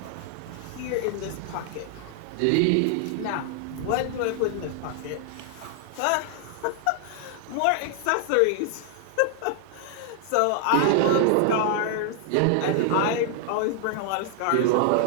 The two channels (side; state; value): both; different; correlation 0.00